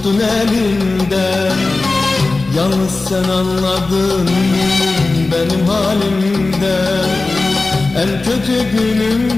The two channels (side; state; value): right; quieter; 3.4 dB